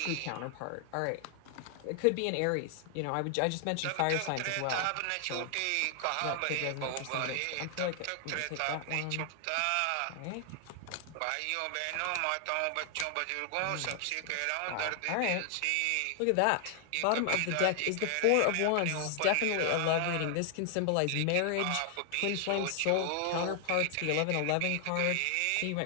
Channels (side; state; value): both; different; correlation 0.00